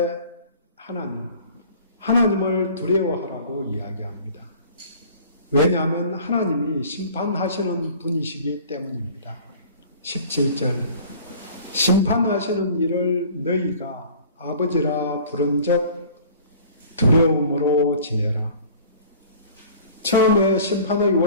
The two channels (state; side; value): inverted; both; correlation -0.47